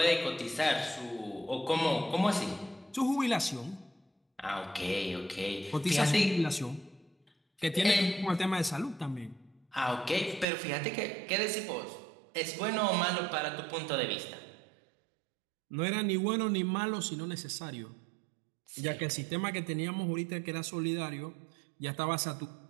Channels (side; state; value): left; drops out; at 10.5 s